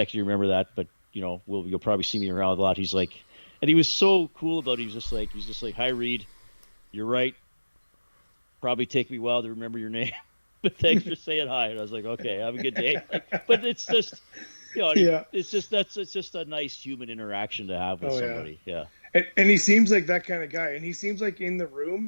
you to remember that, but you know, you'll probably see me around a lot." He's like. And he was so cool about it. He was just like, "Hi, Reid. You're right. Probably take me a while to remember your name, but thanks for saying hi." And I was like, "Okay, have a good day." Like, but it's just, you know, it's just a nice human interaction to have with somebody. Yeah. And he seems like that kind of guy. And he seems like in the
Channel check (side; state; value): both; inverted; correlation -1.00